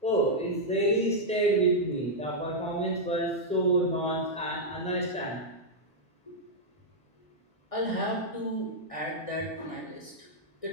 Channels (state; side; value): normal; both; correlation -0.04